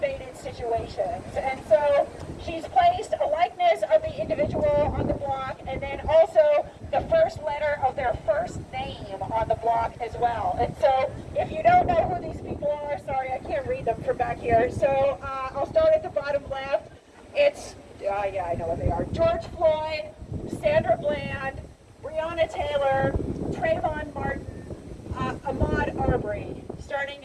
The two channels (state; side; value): identical; both; correlation 1.00